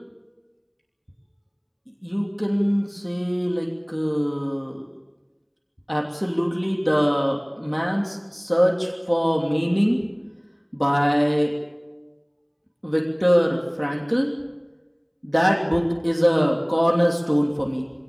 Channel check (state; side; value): identical; both; correlation 1.00